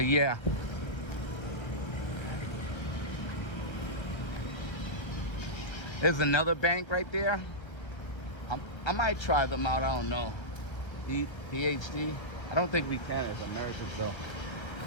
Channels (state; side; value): late; right; 1.2 ms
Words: yeah. There's another bank right there. I might try them out, I don't know. PhD. I don't think we can as Americans though. I